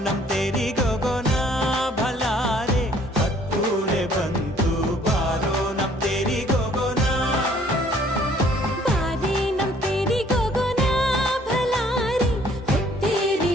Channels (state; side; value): normal; both; correlation 0.59